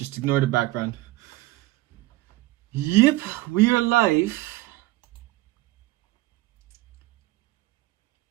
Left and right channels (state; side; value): quieter; left; 18.4 dB